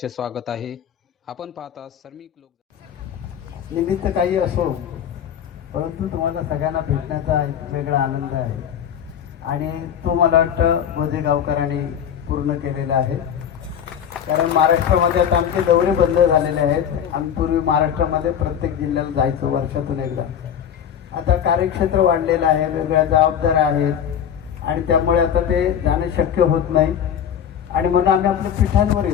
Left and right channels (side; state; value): right; quieter; 8.8 dB